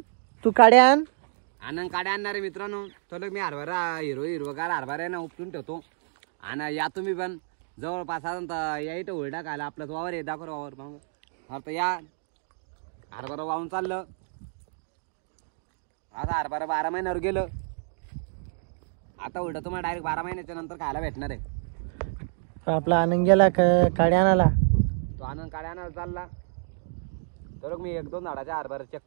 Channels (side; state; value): left; silent; digital silence